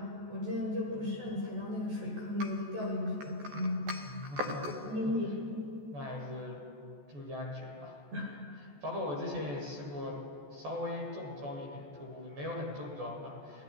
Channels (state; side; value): late; left; 14 ms